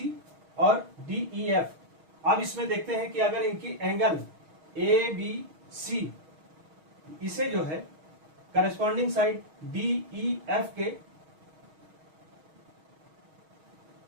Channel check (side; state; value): left; late; 6.3 ms